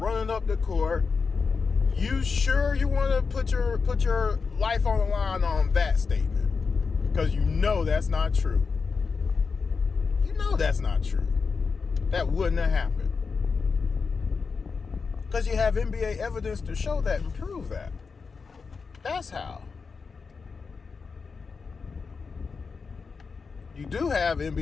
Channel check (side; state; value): right; quieter; 5.0 dB